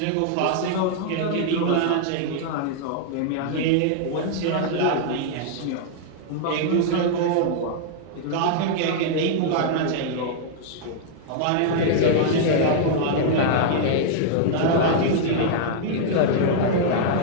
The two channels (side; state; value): both; different; correlation -0.01